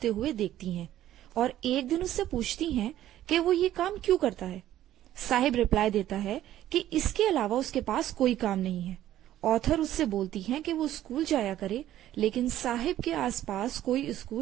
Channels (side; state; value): left; quieter; 12.9 dB